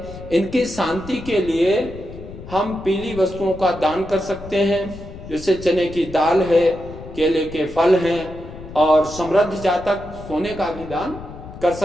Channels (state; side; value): noise; left; rumble, 14 dB below the sound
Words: इनकी शांति के लिए हम पीली वस्तुओं का दान कर सकते हैं, जैसे चने की दाल है, केले के फल हैं, और समृद्ध जातक सोने का भी दान कर